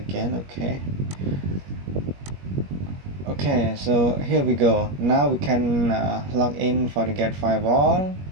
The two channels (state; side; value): late; left; 21 ms